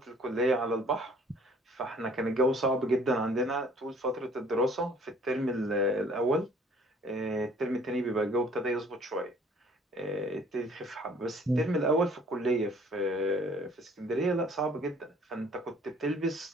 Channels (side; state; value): both; normal; correlation 0.56